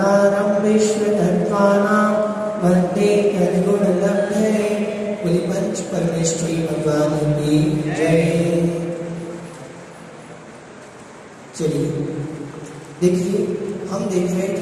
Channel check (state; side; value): identical; both; correlation 1.00